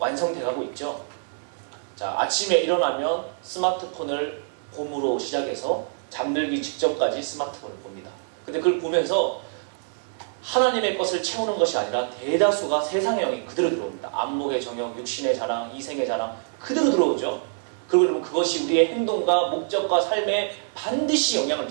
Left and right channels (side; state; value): left; silent; digital silence